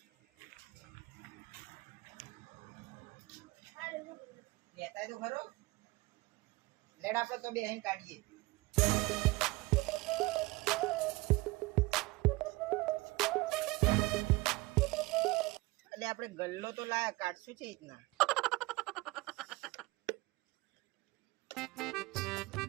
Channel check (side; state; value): left; quieter; 21.8 dB